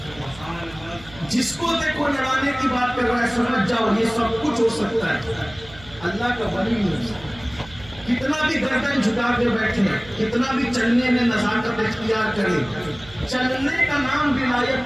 جس کو دیکھو لڑانے کی بات کر رہا ہے سمجھ جاؤ یہ سب کچھ ہو سکتا ہے، اللہ کا ولی نہیں ہو سکتا۔ کتنا بھی گردن جھکا کے بیٹھے، کتنا بھی چلنے میں نزاکت اختیار کرے، چلنے کا نام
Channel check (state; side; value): noise; right; hum, 20 dB below the sound